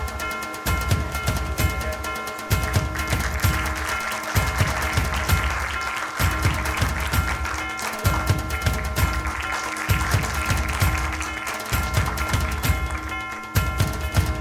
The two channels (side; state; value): both; identical; correlation 1.00